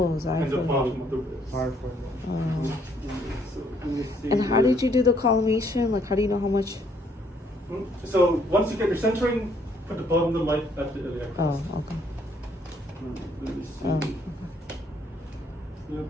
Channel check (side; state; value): both; normal; correlation 0.67